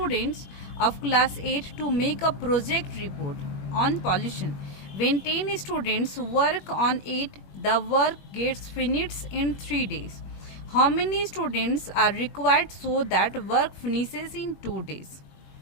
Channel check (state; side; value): late; right; 21 ms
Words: of class 8 to make a project report on pollution. When 10 students work on it, the work gets finished in 3 days. How many students are required so that work finishes in 2 days?